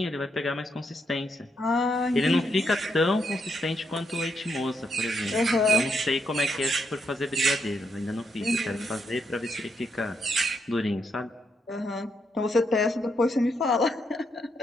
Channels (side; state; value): both; normal; correlation 0.78